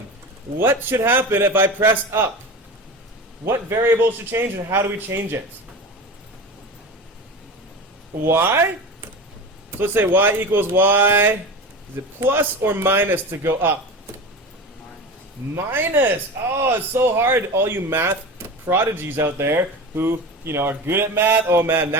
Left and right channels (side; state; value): both; normal; correlation 0.29